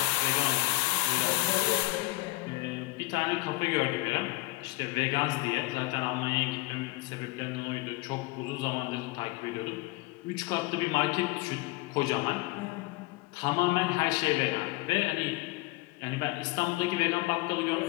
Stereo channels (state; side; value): quieter; right; 21.3 dB